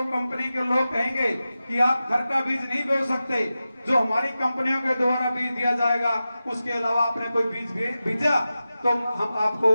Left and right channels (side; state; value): both; inverted; correlation -0.94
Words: कंपनी के लोग कहेंगे कि आप घर का बीज नहीं बो सकते, जो हमारी कंपनियों के द्वारा बीज दिया जाएगा, उसके अलावा आपने कोई बीज भेजा तो हम आपको